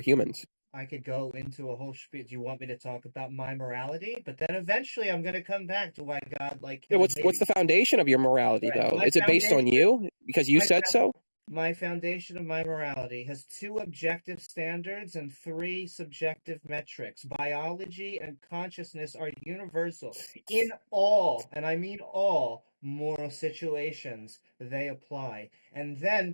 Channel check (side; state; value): both; inverted; correlation -1.00